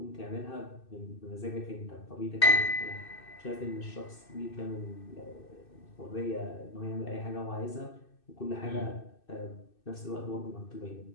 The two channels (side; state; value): right; late; 2.6 ms